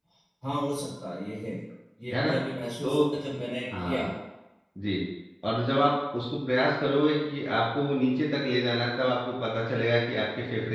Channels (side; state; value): both; identical; correlation 1.00